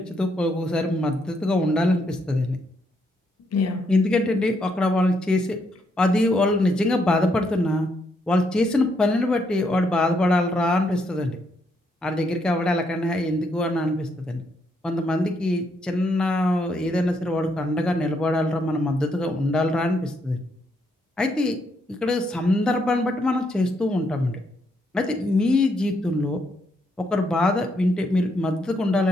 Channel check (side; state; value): both; normal; correlation 0.76